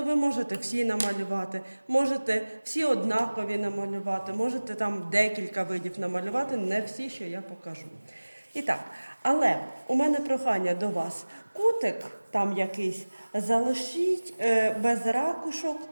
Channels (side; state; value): both; inverted; correlation -1.00